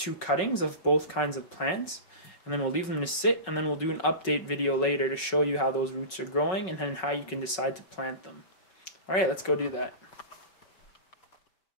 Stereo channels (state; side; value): late; right; 5.4 ms